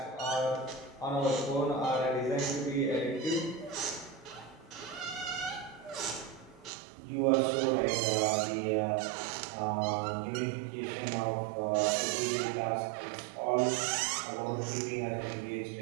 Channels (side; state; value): left; drops out; at 6.7 s